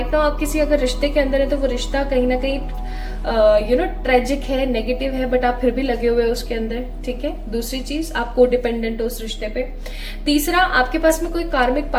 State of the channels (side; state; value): both; identical; correlation 1.00